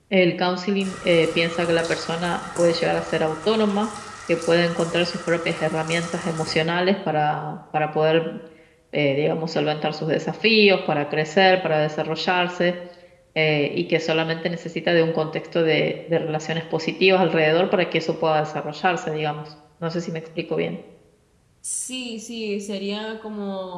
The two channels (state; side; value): identical; both; correlation 1.00